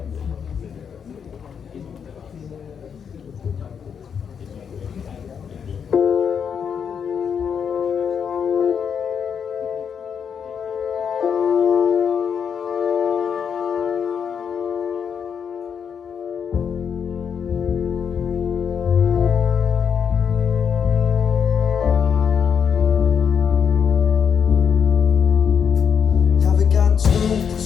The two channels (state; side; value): quieter; right; 7.2 dB